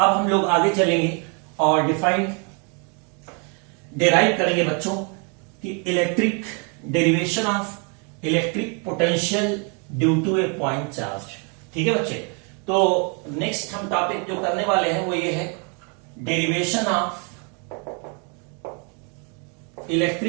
हम लोग आगे चलेंगे और डिराइव करेंगे बच्चों कि electric derivation of electric potential due to a point charge. ठीक है बच्चे, तो नेक्स्ट हम टॉपिक जो करने वाले हैं वो ये है derivation of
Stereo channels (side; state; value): left; quieter; 36.4 dB